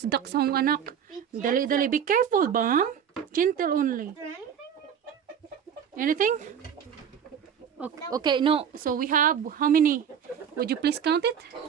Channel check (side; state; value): left; quieter; 8.2 dB